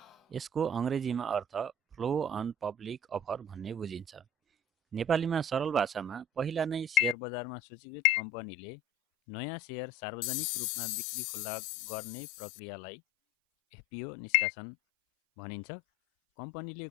यसको अङ्ग्रेजीमा अर्थ फ्लो अन पब्लिक अफर भन्ने बुझिन्छ। नेपालीमा सरल भाषामा पहिला नै सेयर बजारमा सूचीकृत कम्पनीले नयाँ सेयर सार्वजनिक रूपमा बिक्री खुल्ला गर्ने प्रक्रियालाई एफपिओ निष्कासन भनिन्छ। कम्पनीले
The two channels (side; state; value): right; drops out; at 7.2 s